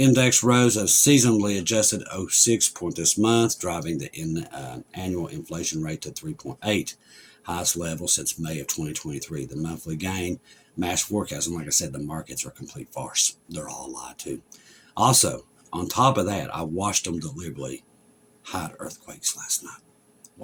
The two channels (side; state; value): both; identical; correlation 1.00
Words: rose a seasonally adjusted 0.6 point this month, driving the annual inflation rate to 3.8, highest level since May of 2023. The monthly gain matched forecast, and like I said, the markets are a complete farce. They're all a lie too. Also, on top of that, I watched them deliberately hide earthquakes last night.